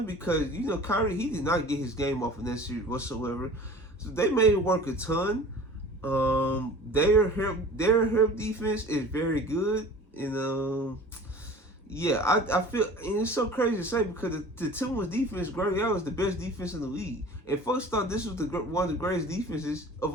because Kyrie, he did not get his game off in that series whatsoever. So they made him work a ton. Their help defense is very good, and yeah, I feel, and it's so crazy to say because the Timberwolves defense, Greg Allen, is the best defense in the league, and folks thought this was one of the greatest defenses of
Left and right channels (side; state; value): both; normal; correlation 0.42